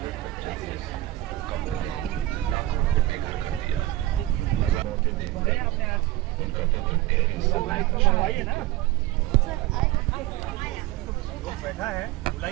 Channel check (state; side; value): quieter; left; 16.5 dB